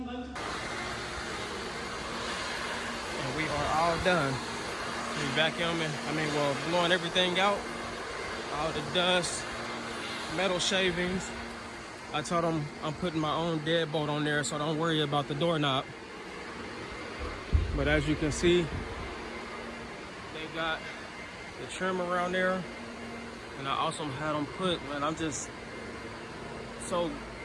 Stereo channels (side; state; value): both; identical; correlation 1.00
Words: And we are all done. We vacuuming, blowing everything out. All the dust, metal shavings. I told them I'm putting my own deadbolt on there, so don't worry about the doorknob. But as you can see, they got the trim around there. And I also had them put, man, I'm just so